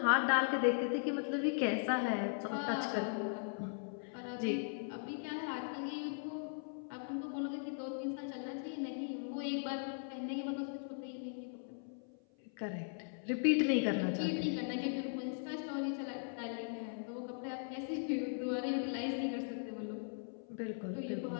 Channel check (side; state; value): right; silent; 52 dB below the other